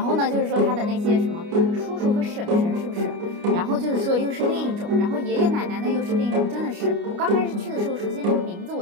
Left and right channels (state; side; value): late; left; 29 ms